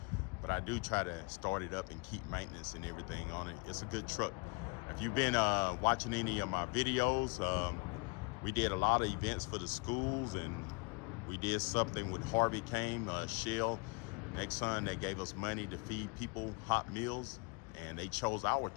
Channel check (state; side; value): quieter; right; 29.7 dB